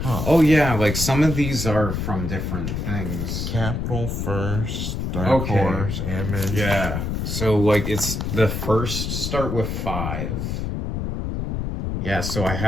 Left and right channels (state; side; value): noise; left; rumble, 2 dB below the sound